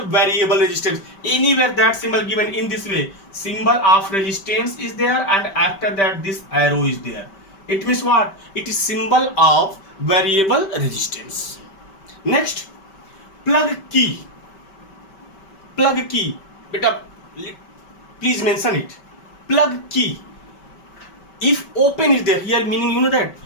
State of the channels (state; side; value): late; right; 5.2 ms